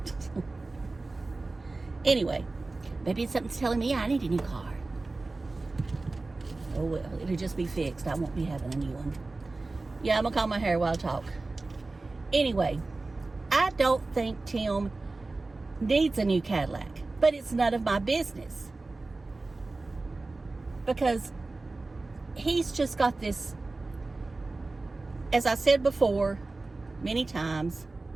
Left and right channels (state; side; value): quieter; left; 3.3 dB